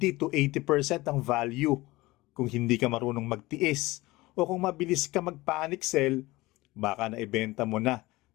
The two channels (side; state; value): right; quieter; 20.1 dB